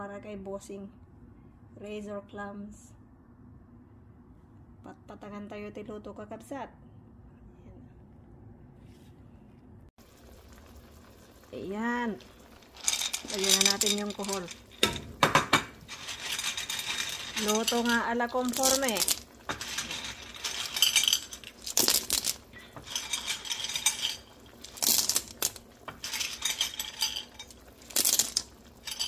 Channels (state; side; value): identical; both; correlation 1.00